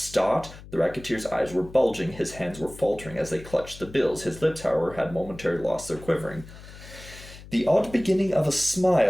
The racketeer's eyes were bulging. His hands were faltering as they clutched the bills. His lips, however, had momentarily lost their quivering. The odd beginning of a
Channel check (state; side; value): noise; left; hum, 17 dB below the sound